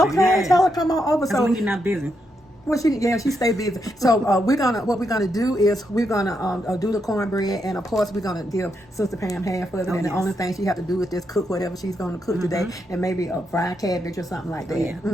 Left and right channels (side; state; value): both; normal; correlation 0.81